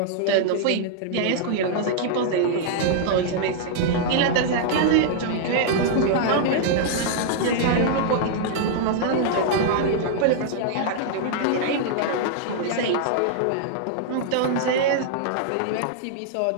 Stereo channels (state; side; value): different; both; correlation -0.01